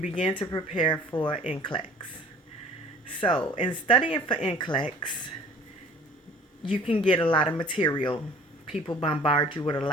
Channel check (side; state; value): both; normal; correlation 0.49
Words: to prepare for NCLEX. So, in studying for NCLEX, you can get a lot of material. People bombard you with a